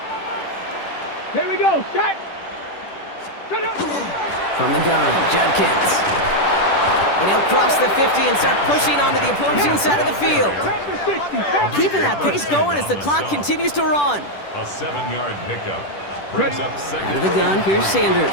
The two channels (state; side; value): late; right; 10 ms